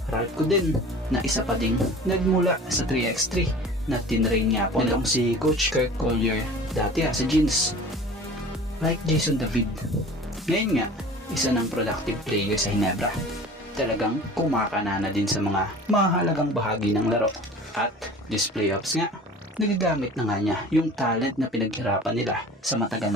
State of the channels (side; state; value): both; normal; correlation 0.42